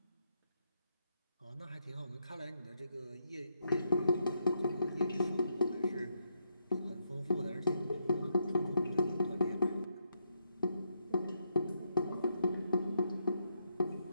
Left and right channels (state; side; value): inverted; both; correlation -0.79